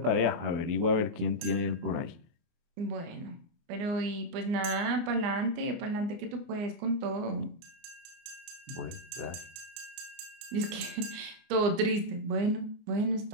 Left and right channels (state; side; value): late; left; 24 ms